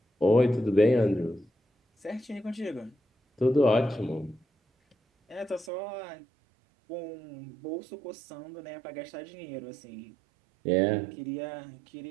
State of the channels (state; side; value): drops out; left; at 5.7 s